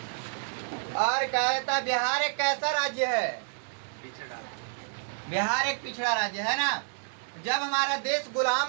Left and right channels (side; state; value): left; silent; digital silence